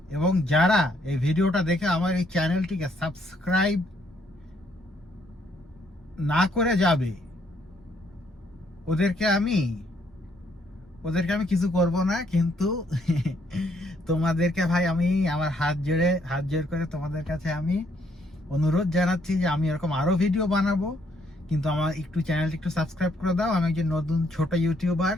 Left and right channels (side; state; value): both; normal; correlation 0.70